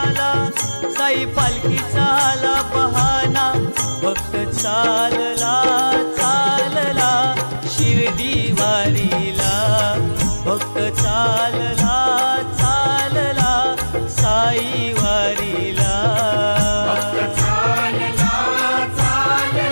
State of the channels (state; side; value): inverted; both; correlation -1.00